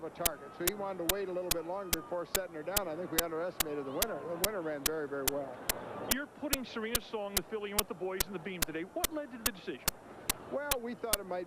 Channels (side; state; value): both; identical; correlation 1.00